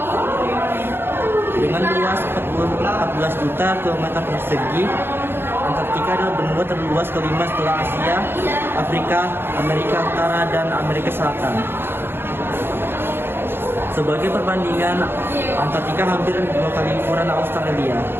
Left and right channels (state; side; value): late; left; 0.11 ms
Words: Dengan luas 14 juta kilometer persegi, Antartika adalah benua terluas kelima setelah Asia, Afrika, Amerika Utara, dan Amerika Selatan. Sebagai perbandingan, Antartika hampir 2 kali ukuran Australia.